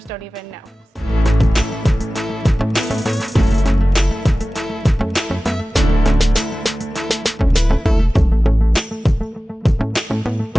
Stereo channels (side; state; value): both; normal; correlation 0.96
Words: don't even know.